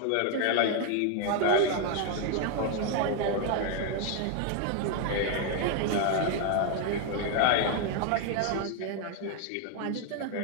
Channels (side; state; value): both; different; correlation 0.01